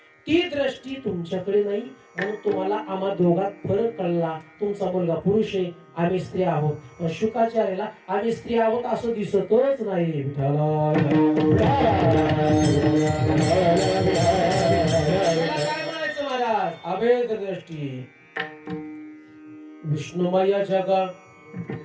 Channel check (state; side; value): identical; both; correlation 1.00